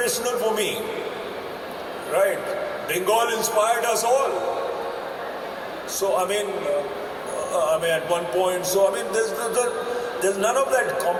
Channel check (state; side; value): identical; both; correlation 1.00